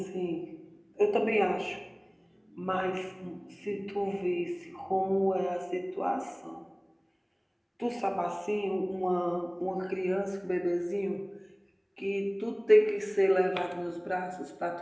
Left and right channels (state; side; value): identical; both; correlation 1.00